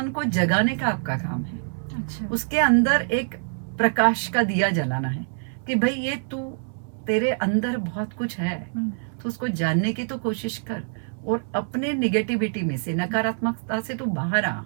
को जगाने का आपका काम है। अच्छा। उसके अंदर एक प्रकाश का दिया जलाना है कि भाई ये तू, तेरे अंदर बहुत कुछ है, तो उसको जानने की तो कोशिश कर। और अपने निगेटिविटी में से, नकारात्मकता से तू बाहर आ,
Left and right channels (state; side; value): silent; left; 62 dB below the other